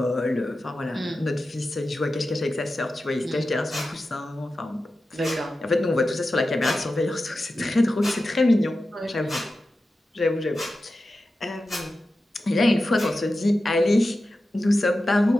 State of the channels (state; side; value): normal; both; correlation 0.93